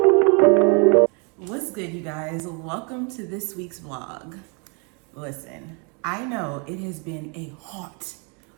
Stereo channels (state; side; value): quieter; left; 35.0 dB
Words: What's good, you guys? Welcome to this week's vlog. Listen, I know it has been a hot,